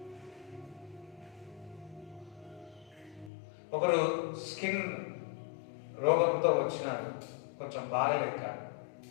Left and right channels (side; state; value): right; drops out; at 3.3 s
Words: ఒకరు స్కిన్ రోగంతో వచ్చినారు, కొంచెం బాగలేక